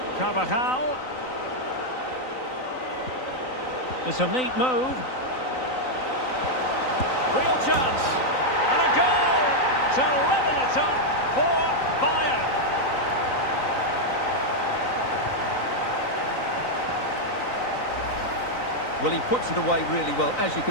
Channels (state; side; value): late; right; 3.9 ms